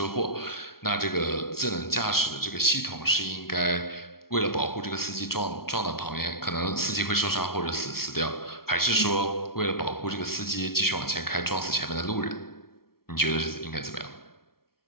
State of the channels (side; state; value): right; late; 0.94 ms